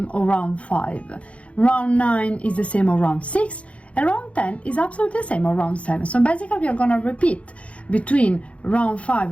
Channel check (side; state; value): right; late; 0.063 ms